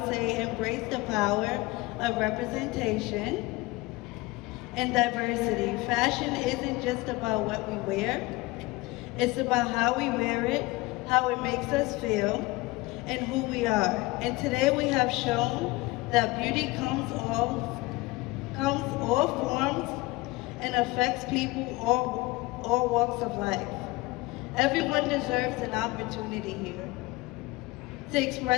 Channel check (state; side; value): quieter; right; 21.7 dB